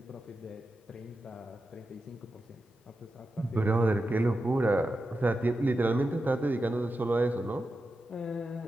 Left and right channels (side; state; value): both; normal; correlation 0.90